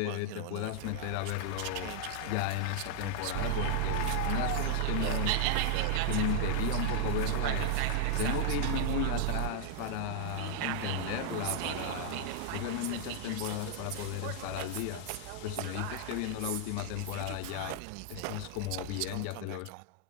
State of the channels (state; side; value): different; both; correlation 0.00